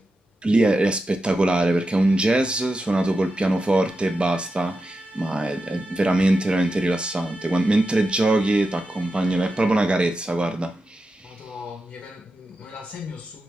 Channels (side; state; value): both; normal; correlation 0.90